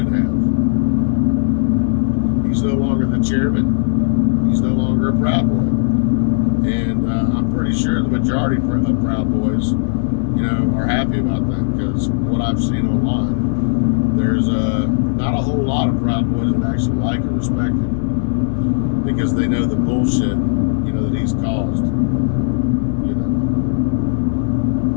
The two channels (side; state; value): right; silent; digital silence